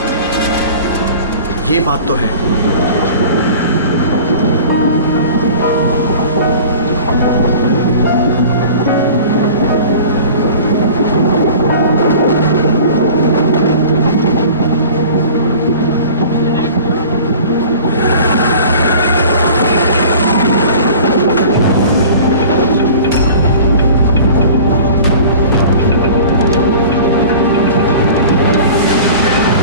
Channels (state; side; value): inverted; both; correlation -0.42